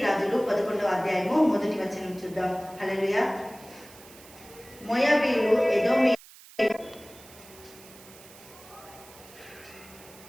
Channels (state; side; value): noise; right; hiss, 21 dB below the sound